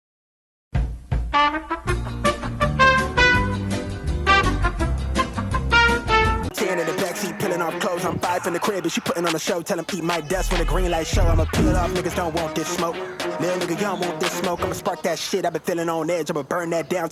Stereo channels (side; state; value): both; identical; correlation 1.00